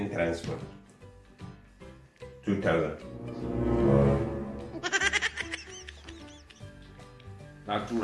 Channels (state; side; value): identical; both; correlation 1.00